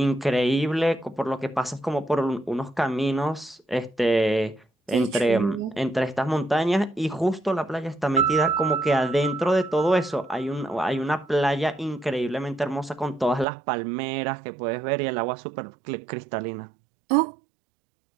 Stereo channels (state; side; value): drops out; left; at 13.5 s